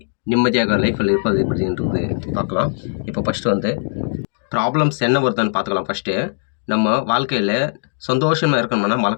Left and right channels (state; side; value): silent; right; digital silence